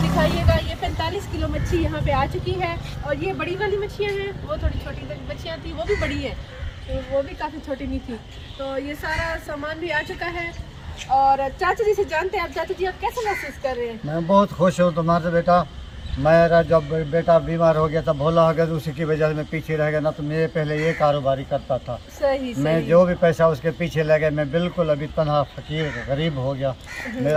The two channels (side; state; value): both; identical; correlation 1.00